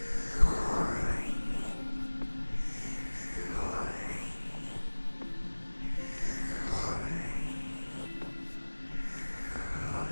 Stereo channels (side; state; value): both; inverted; correlation -1.00